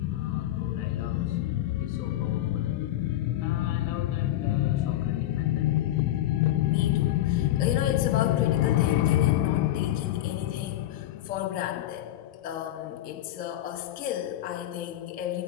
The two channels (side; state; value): right; quieter; 13.7 dB